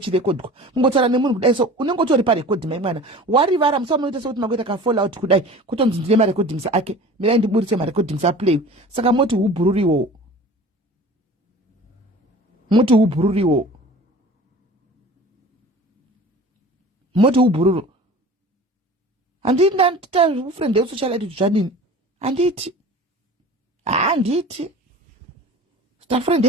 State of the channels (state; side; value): normal; both; correlation 0.40